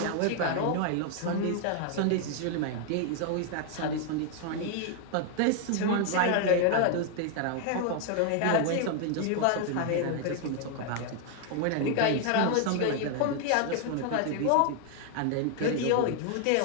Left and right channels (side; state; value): both; different; correlation 0.00